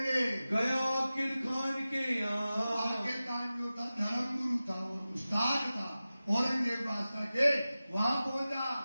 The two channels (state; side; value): inverted; both; correlation -0.95